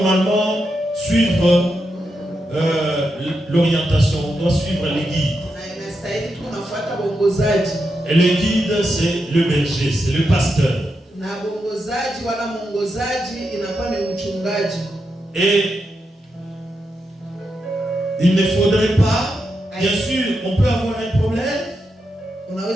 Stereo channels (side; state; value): both; normal; correlation 0.85